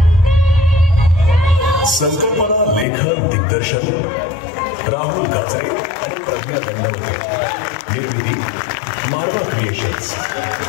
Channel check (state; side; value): drops out; right; at 2.9 s